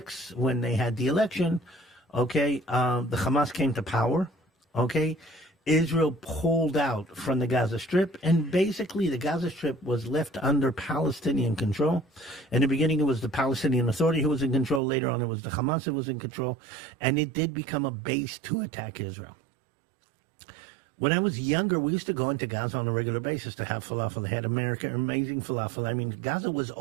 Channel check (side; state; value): left; drops out; at 14.8 s